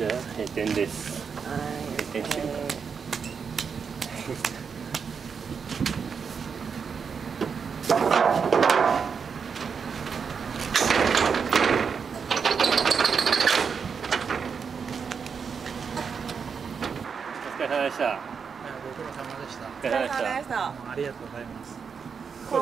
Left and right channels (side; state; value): left; quieter; 6.1 dB